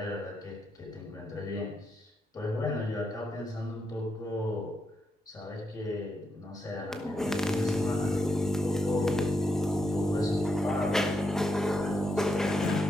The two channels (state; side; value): normal; both; correlation 0.82